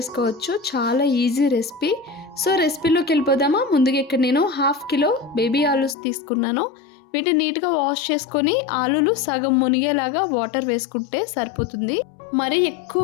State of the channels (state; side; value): drops out; right; at 6.0 s